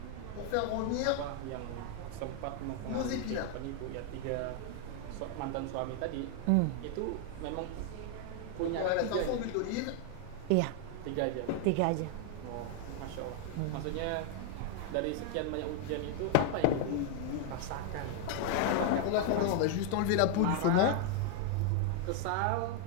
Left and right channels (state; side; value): different; both; correlation 0.00